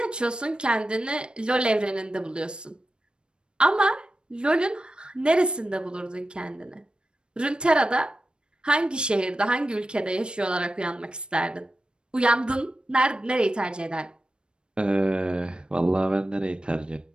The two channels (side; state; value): left; late; 0.053 ms